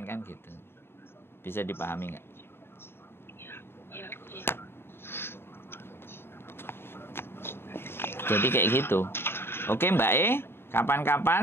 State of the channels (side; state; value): right; late; 0.11 ms